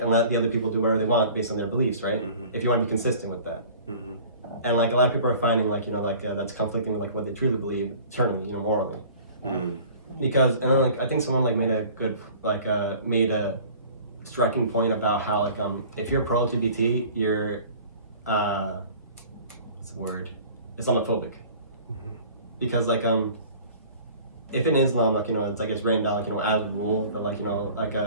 and let the other people do whatever they want based on their beliefs, right? If you want to be consistent with that. And like a lot of people are finding like that's conflicting with like what they truly believe internally, morally. Because and then like I think someone like made a good made a striking point about how like if you're pro LGBT, you're what's the word? Islamophobic. Because like if in Islam like it's like it's written down like as a rule that like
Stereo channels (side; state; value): both; inverted; correlation -0.45